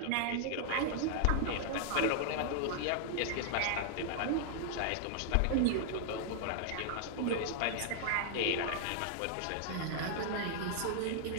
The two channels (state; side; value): different; both; correlation -0.01